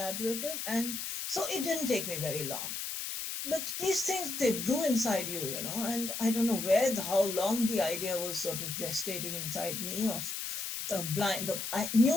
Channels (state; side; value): noise; left; hiss, 4 dB below the sound